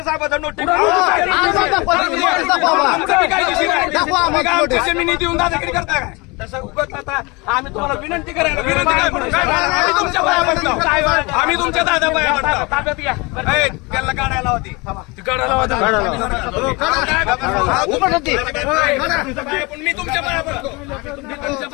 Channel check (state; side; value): quieter; right; 26.4 dB